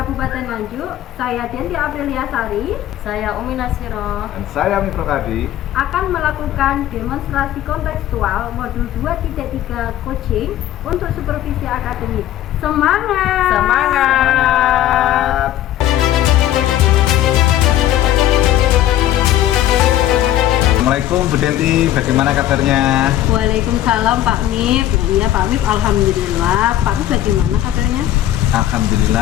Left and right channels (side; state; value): right; quieter; 12.9 dB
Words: Nganjuk, saya Denti Aprilia Sari, Saya Umi Nasiro, Dan saya Mifro Hadi akan melakukan demonstrasi kontekstual modul 2.3 coaching untuk supervisi akademik. Semangat! Semangat! Assalamualaikum Bu Denti, bagaimana kabarnya? Waalaikumsalam Pak Mif. Iya Pak Mif, alhamdulillah. Pak Mif bagaimana kabarnya?